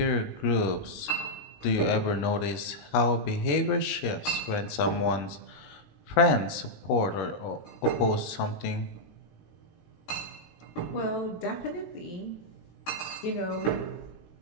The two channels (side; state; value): right; late; 19 ms